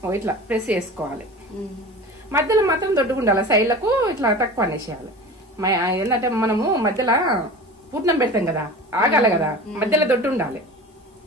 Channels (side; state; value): both; normal; correlation 0.35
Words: ఇట్లా ప్రెస్ చేసుకోవాలి. మధ్యలో మాత్రం దొడ్డుగా ఉండాలి, సైడ్లకు ఇట్లా తక్కువ అనేసేయాలి. ఏంటంటే మనము మధ్యలో పూర్ణం పెడతాం కదా, ఆగాలి కదా, మధ్యలో దొడ్డు ఉండాలి